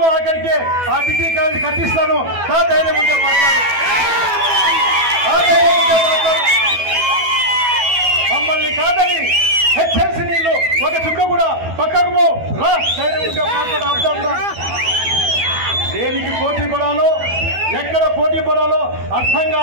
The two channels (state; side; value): late; left; 12 ms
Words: అక్కడికి ఆ డిగ్రీ కాలేజీ కట్టిస్తాను. ధైర్యం ఉంటే మాట్లాడు. మమ్మల్ని కాదని హెచ్ఎంసీ నీళ్లు ఒక చుక్క కూడా పక్కకు రా. ధైర్యం ఉంటే మాట్లాడు. దేనికి పోటీ పడాలో, ఎక్కడ పోటీ పడాలో అర్థం